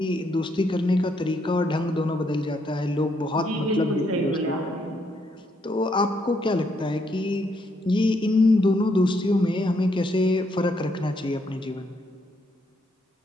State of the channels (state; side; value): normal; both; correlation 0.74